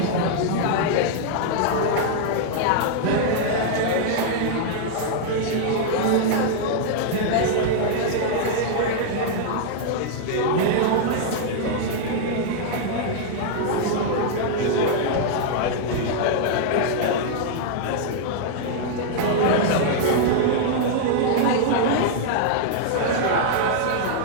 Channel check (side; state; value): both; different; correlation -0.01